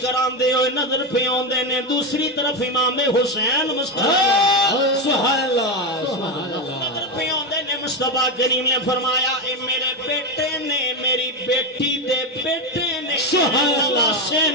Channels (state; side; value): normal; both; correlation 0.12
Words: ہوئے نظر پہ آندے نے دوسری طرف امام حسین مسکراندے سبحان اللہ سبحان اللہ نظر پہ آندے نے مصطفیٰ کریم نے فرمایا اے میرے بیٹے نے میری بیٹی دے بیٹے نے سبحان اللہ سے